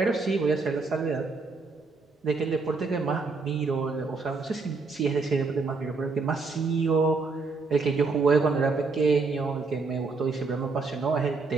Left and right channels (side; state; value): left; quieter; 4.1 dB